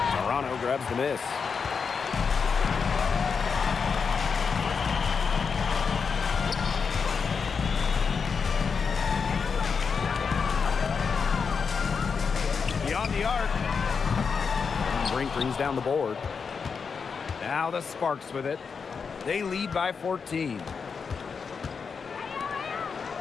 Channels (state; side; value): quieter; right; 5.7 dB